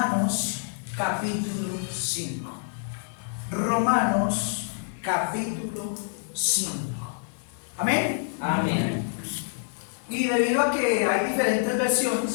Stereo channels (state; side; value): silent; right; digital silence